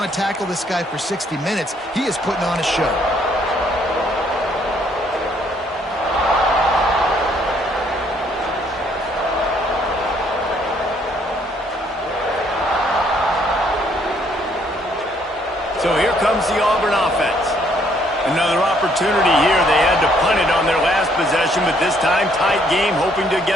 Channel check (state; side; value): normal; both; correlation 0.67